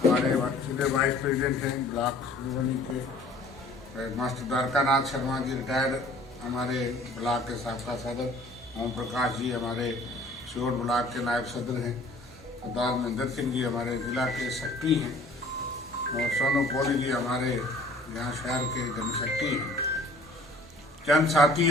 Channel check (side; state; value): both; normal; correlation 0.52